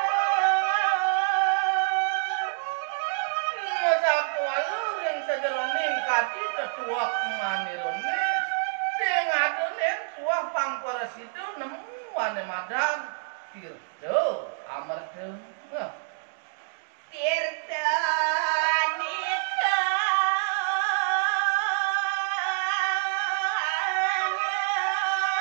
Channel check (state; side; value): silent; left; digital silence